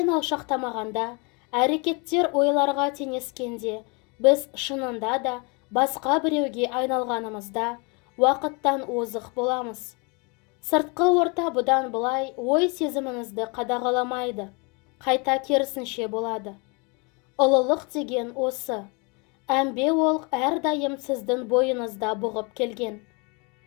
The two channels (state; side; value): quieter; right; 31.3 dB